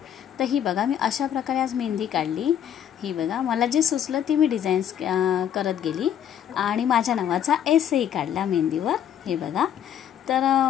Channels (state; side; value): quieter; right; 9.7 dB